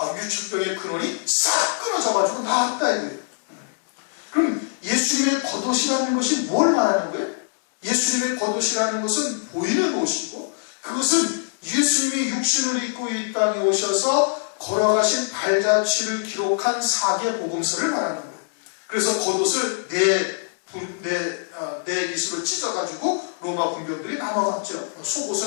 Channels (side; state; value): right; silent; digital silence